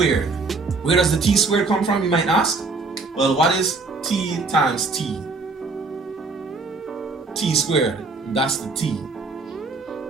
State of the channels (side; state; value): left; quieter; 3.8 dB